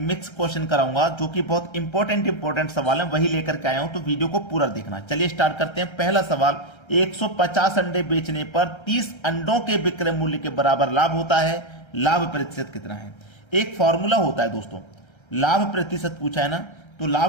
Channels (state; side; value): late; right; 1.3 ms